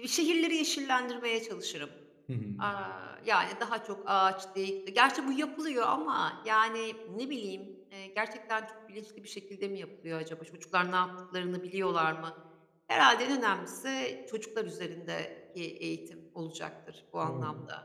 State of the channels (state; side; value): identical; both; correlation 1.00